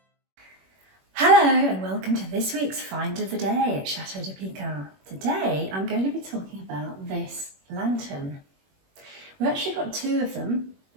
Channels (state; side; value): late; left; 21 ms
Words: Hello and welcome to this week's Find of the Day at Chateau de Pican. Today I'm going to be talking about this lantern. We've actually got two of them.